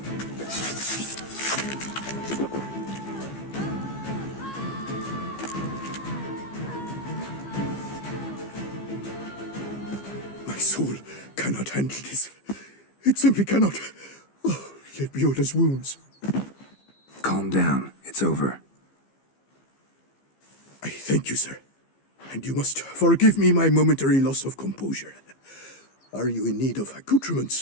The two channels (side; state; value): right; late; 15 ms